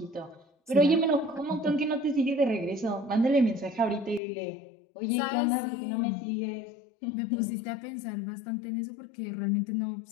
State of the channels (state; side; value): drops out; right; at 4.2 s